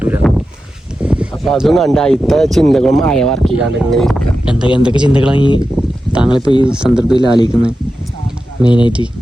അപ്പൊ അതും കണ്ട അയിത്തെ ചിന്തകളും ആയ വർക്ക് ചെയ്യാണ്ട് ഇങ്ങനെ ഇരിക്കാം. എന്തൊക്കെ ചിന്തകളാണ് ഈ താങ്കളിപ്പോ ഈ സന്ദർഭത്തിൽ ആലോചിക്കുന്നത്? മെയിനായിട്ട്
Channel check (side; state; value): both; normal; correlation 0.91